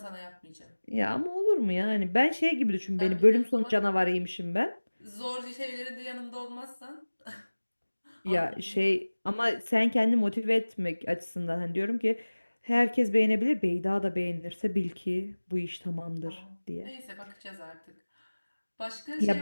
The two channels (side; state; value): both; inverted; correlation -1.00